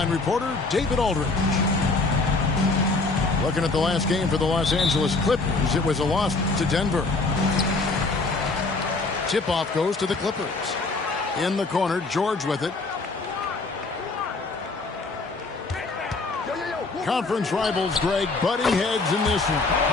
reporter, David Aldridge. Looking at the last game for the Los Angeles Clippers, it was a loss to Denver. Tip-off goes to the Clippers. In the corner, George with it. Conference rivals, Greg, butting heads in this one.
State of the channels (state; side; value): quieter; right; 3.5 dB